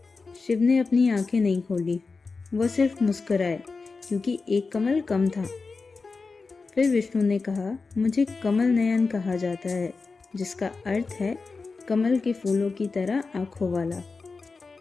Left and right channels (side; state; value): right; quieter; 4.2 dB